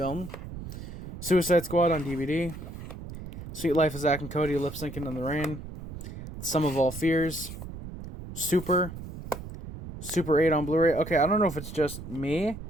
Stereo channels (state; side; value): noise; right; rumble, 11 dB below the sound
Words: Suicide Squad on DVD. Sweet Life of Zack and Cody lip syncing in the rain. Sum of All Fears. Super 8 on Blu-ray. Okay, I don't know if it's just me.